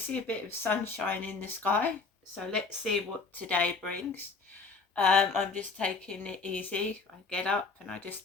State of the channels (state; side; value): quieter; right; 4.4 dB